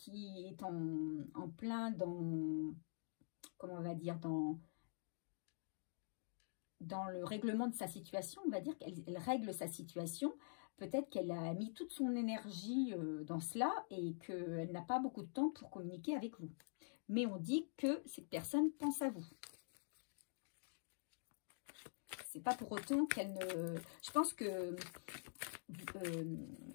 en plein dans, comment on va dire, dans le règlement de sa situation, on va dire qu'elle règle sa situation. Peut-être qu'elle a mis toute son énergie dans cela et qu'elle n'a pas beaucoup de temps pour communiquer avec vous. Mais on dit que cette personne pense à vous. C'est pas pour autant qu'elle ne... Je pense que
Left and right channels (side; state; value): right; silent; digital silence